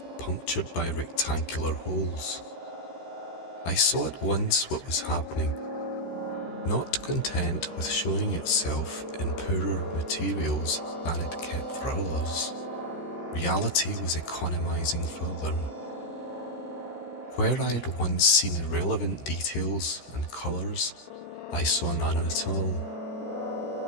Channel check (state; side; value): late; right; 13 ms